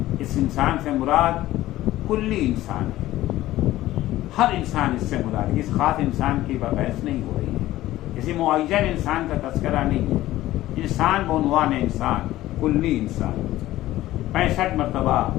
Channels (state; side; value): quieter; right; 15.5 dB